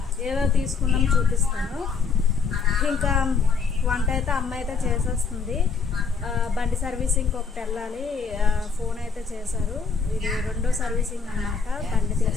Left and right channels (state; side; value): quieter; right; 5.4 dB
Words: ఏవో తీసుకున్నాము చూపిస్తాను. ఇంకా వంట అయితే అమ్మ అయితే చేసేస్తుంది. బండి సర్వీసింగ్ ఒకటి వెళ్ళాలి. ఫోన్ అయితే చేశారు. ఇది రెండో సర్వీసింగ్ అన్నమాట. బండి